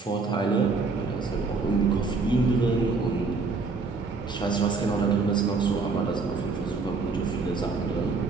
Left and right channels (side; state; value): left; quieter; 4.2 dB